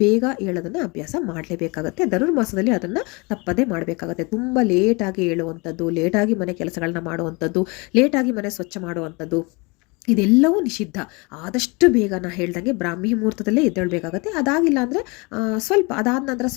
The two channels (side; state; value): right; quieter; 28.2 dB